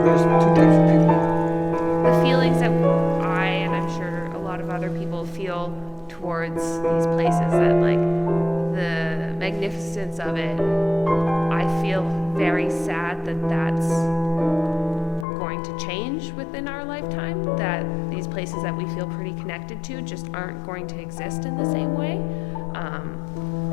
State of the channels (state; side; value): drops out; right; at 15.2 s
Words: two types of people. The feelings that I, and I'm sure a lot of other people feel towards these places, that like the magnificence of it, I feel very sad that that's going to change within our lifetime, that these places that we feel pretty connected to just aren't going to exist in the same way.